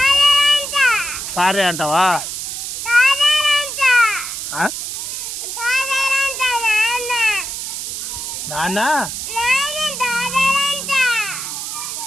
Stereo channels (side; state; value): right; noise; hiss, 5 dB below the sound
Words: సారే అంటావా? నాన్న